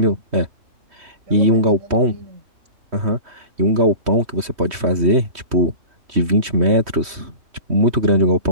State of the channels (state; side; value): late; left; 3.1 ms